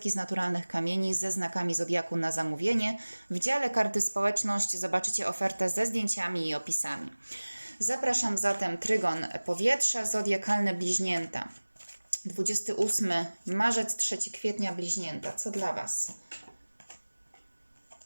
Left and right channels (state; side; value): inverted; both; correlation -1.00